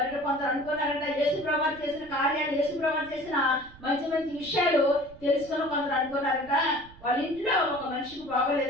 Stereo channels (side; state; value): right; noise; rumble, 22 dB below the sound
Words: కొందరు అనుకున్నారట యేసు ప్రభు చేసిన కార్యాలు, యేసు ప్రభు చేసిన మంచి మంచి విషయాలు తెలుసుకుని కొందరు అనుకున్నారట వాళ్ళ ఇంట్లో ఒక మనిషికి